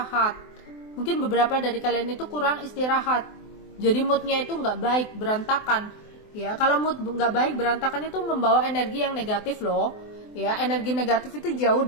Mungkin beberapa dari kalian itu kurang istirahat, jadi moodnya itu nggak baik, berantakan, ya. Kalau mood nggak baik, berantakan itu membawa energi yang negatif loh, ya. Energi negatif itu jauh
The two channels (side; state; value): right; late; 24 ms